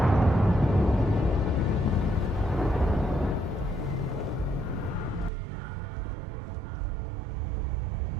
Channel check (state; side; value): drops out; left; at 5.3 s